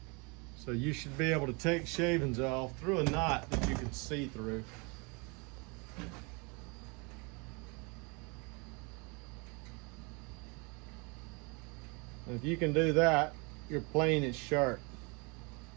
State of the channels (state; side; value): quieter; left; 30.5 dB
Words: So you should be able to take shavings off through a knot that you can see through. And if you can do that, your plane is sharp.